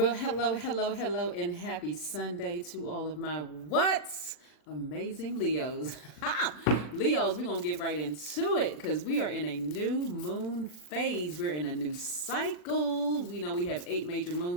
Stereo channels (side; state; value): right; late; 40 ms